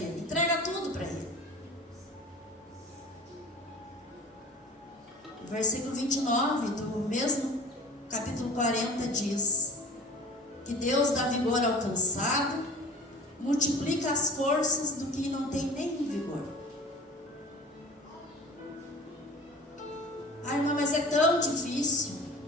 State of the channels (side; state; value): both; normal; correlation 0.41